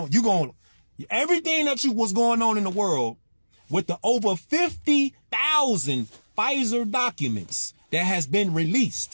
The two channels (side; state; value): both; inverted; correlation -1.00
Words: Everything that was going on in the world with the over 50,000 Pfizer documents that has been